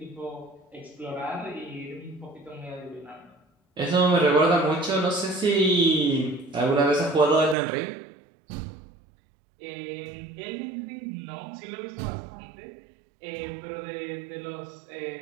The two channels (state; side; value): drops out; left; at 7.6 s